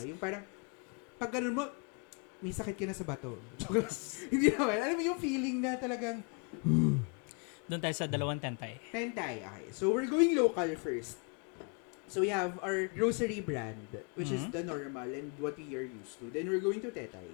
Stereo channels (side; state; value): right; quieter; 36.4 dB